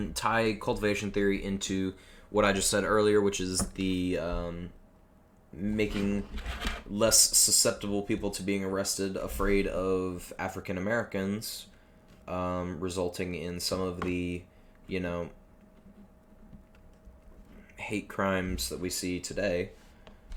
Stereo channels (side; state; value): both; identical; correlation 1.00